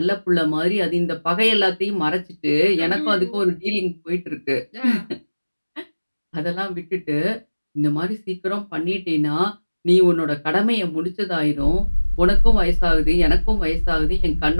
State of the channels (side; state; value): both; inverted; correlation -1.00